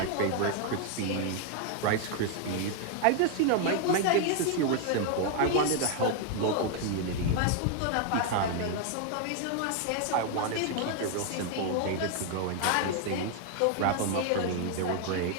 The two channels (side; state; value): both; different; correlation 0.00